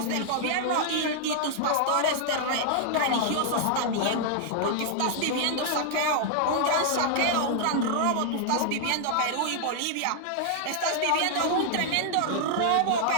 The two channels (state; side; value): different; both; correlation 0.00